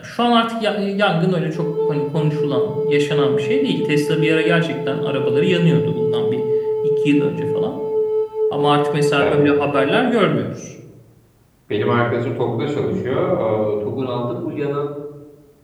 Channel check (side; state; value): both; identical; correlation 1.00